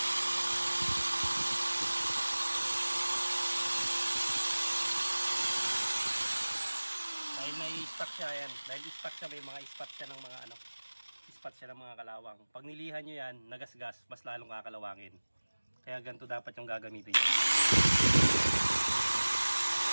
Stock siya yan. Dahil stock siya, may mga spot siya ng mga ano, spot siya ng mga kalawang. Pag nilihan nyo yan, nagasgas, mas lalong kakalawangin. Kaya ganito dapat yung gagamitin nyo.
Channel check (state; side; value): inverted; both; correlation -1.00